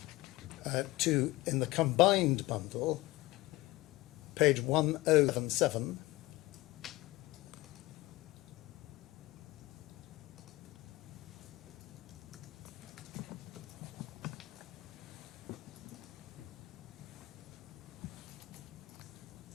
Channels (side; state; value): right; quieter; 19.7 dB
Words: to, in the combined bundle, page 1077,